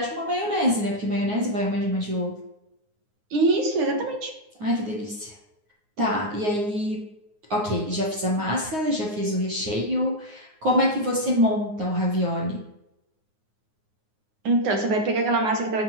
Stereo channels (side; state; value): left; late; 9.6 ms